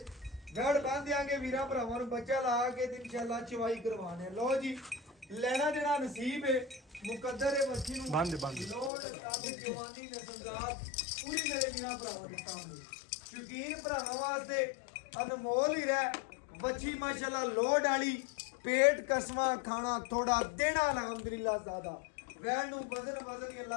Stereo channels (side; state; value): right; drops out; at 8.9 s